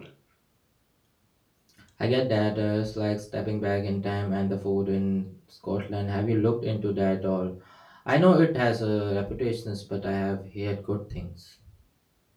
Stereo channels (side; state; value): both; identical; correlation 1.00